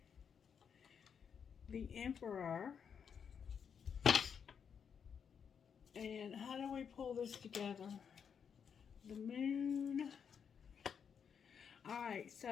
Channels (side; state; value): right; quieter; 7.1 dB